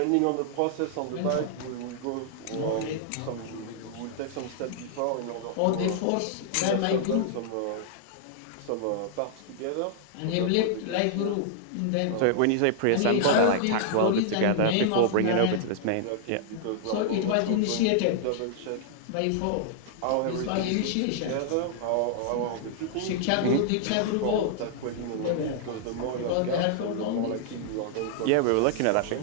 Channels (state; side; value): different; both; correlation -0.01